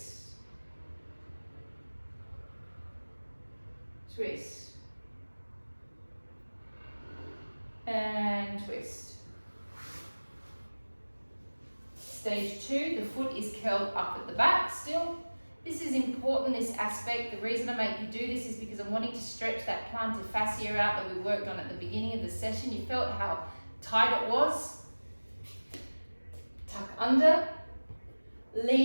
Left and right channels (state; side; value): inverted; both; correlation -1.00